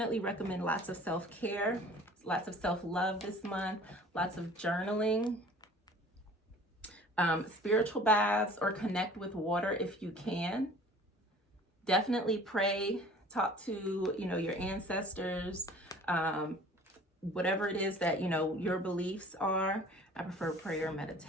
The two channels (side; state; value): both; normal; correlation 0.48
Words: recommend lots of self-care, lots of self-love this month, lots of journaling, spiritual baths, or connect with water if you can. Definitely pray, talk to, your ancestors, whatever it is that, your beliefs are. I prefer prayer and